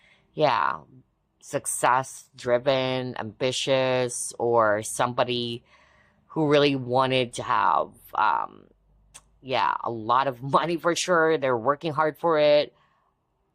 yeah, success-driven, ambitious, or somebody who really wanted to have, yeah, a lot of money for sure. They're working hard for it.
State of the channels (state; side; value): identical; both; correlation 1.00